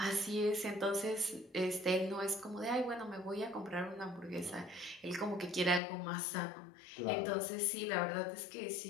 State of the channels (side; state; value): right; drops out; at 5.8 s